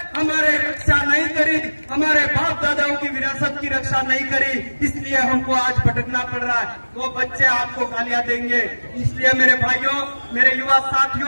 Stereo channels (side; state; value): both; inverted; correlation -1.00